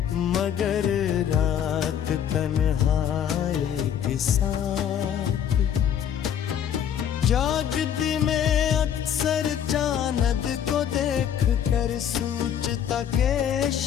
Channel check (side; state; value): right; quieter; 9.2 dB